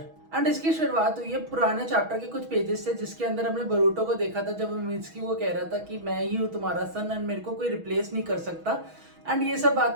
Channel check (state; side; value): late; left; 6.2 ms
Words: एंड इसकी शुरुआत हुई है पुराने चैप्टर के कुछ पेजेस से, जिसके अंदर हमने बरूटो को देखा था जब मित्सुकी को कह रहा था कि मैं ही हूँ तुम्हारा सन एंड मेरे को कोई रिप्लेस नहीं कर सकता। एंड ये सब